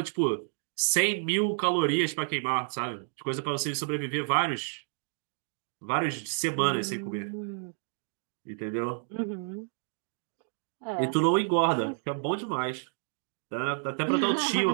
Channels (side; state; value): left; silent; digital silence